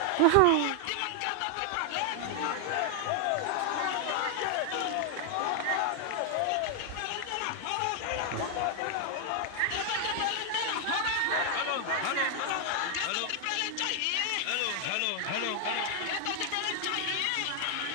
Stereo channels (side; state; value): both; different; correlation 0.00